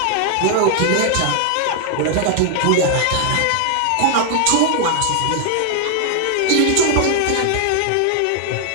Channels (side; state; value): both; different; correlation 0.00